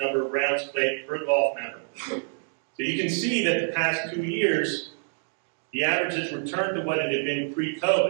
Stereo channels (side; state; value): left; silent; digital silence